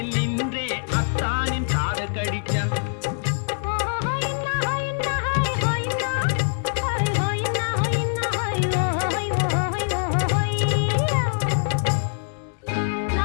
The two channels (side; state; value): right; silent; 63 dB below the other